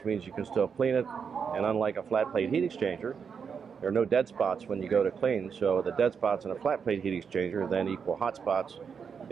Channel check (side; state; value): left; quieter; 6.4 dB